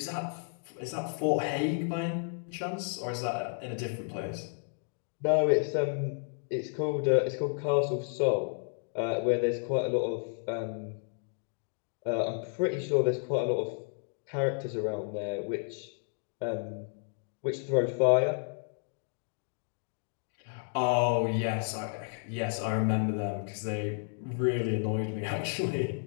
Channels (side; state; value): right; silent; 56 dB below the other